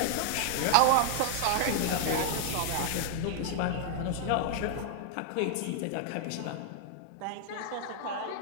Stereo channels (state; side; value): different; both; correlation 0.00